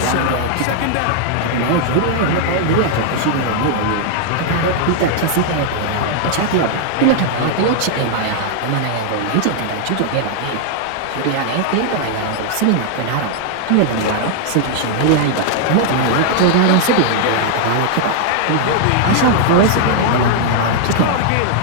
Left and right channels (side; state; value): both; different; correlation 0.00